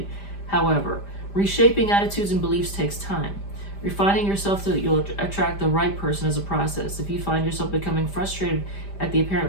However, reshaping attitudes and beliefs takes time. Refining yourself so that you'll attract the right person is a process. If you find yourself becoming frustrated at the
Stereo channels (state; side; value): late; right; 5.0 ms